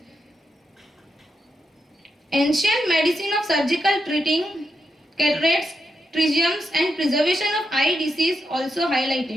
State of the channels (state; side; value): normal; both; correlation 0.84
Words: Ancient medicine of surgical treating cataracts, trichomes and preservation of eye disease also